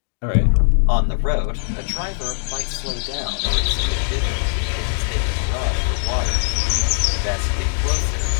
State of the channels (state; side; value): silent; right; digital silence